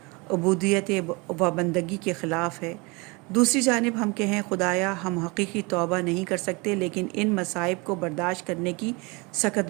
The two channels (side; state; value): left; quieter; 27.5 dB